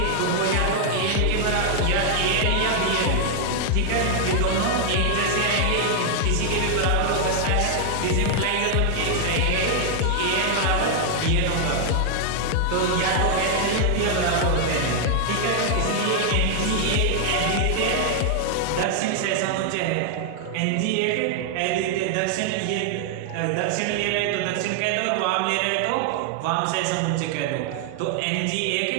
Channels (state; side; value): different; both; correlation 0.00